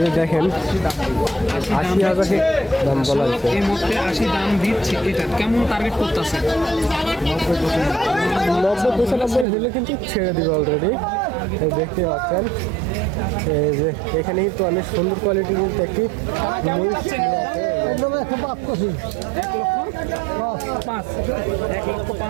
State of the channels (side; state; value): left; drops out; at 9.5 s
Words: যে দেখেন 80,000 দাম বলা হয়েছে। এই মুহূর্তে 80 দাম দিচ্ছে। এটা কেমন টার্গেট করতেছে? 90-95 হলে কিন্তু ছেড়ে দিবে অলরেডি। দেখতে পাচ্ছেন এই যে এখানে কিন্তু অনেক সুন্দর কোয়ালিটির কিন্তু একটি মহিষ আছে। একদম 1,05,000